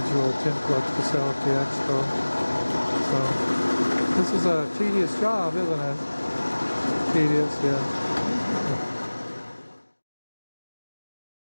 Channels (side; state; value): both; inverted; correlation -1.00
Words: tint plugs to sell at the expo. So this is a tedious job, isn't it? Tedious, yeah.